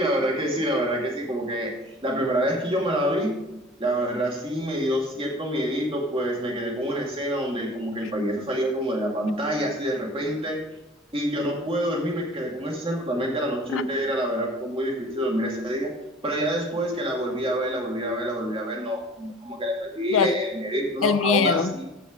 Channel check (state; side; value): normal; both; correlation 0.44